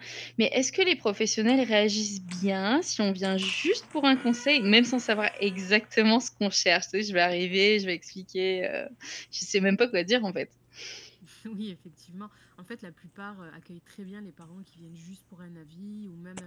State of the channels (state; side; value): identical; both; correlation 1.00